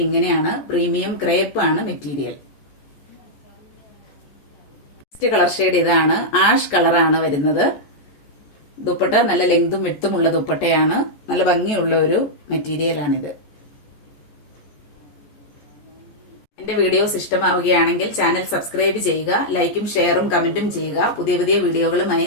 ഇങ്ങനെയാണ്. പ്രീമിയം ക്രേപ്പ് ആണ് മെറ്റീരിയൽ. നെക്സ്റ്റ് കളർ ഷെയ്ഡ് ഇതാണ്. ആഷ് കളറാണ് വരുന്നത്. ദുപ്പട്ട നല്ല ലെങ്തും വിഡ്ത്തുമുള്ള ദുപ്പട്ടയാണ്. നല്ല ഭംഗിയുള്ള ഒരു മെറ്റീരിയൽ ആണിത്. എന്റെ വീഡിയോസ് ഇഷ്ടമാവുകയാണെങ്കിൽ ചാനൽ സബ്സ്ക്രൈബ് ചെയ്യുക. ലൈക്കും ഷെയറും കമന്റും ചെയ്യുക. പുതിയ പുതിയ വീഡിയോകളുമായി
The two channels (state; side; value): late; right; 14 ms